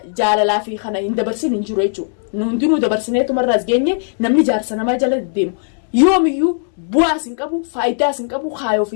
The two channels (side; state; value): right; silent; digital silence